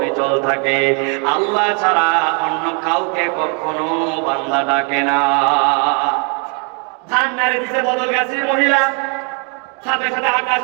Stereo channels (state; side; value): quieter; left; 37.7 dB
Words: থাকে। আল্লাহ ছাড়া অন্য কাউকে কখনো বান্দা ডাকে না। ধান নাড়ে দিতে বদল গেছে মহিলা, সাথে সাথে